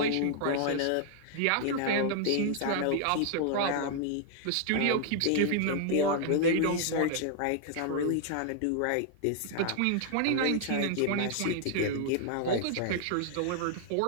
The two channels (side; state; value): both; different; correlation 0.00